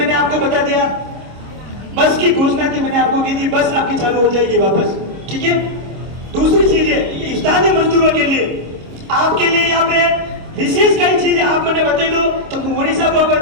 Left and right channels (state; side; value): late; left; 26 ms